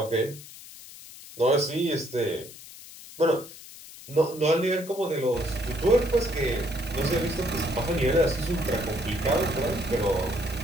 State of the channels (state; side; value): noise; left; hiss, 16 dB below the sound